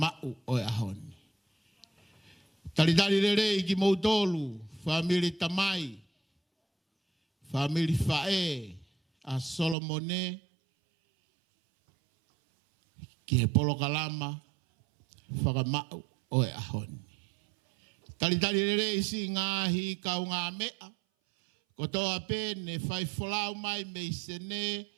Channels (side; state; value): left; drops out; at 9.8 s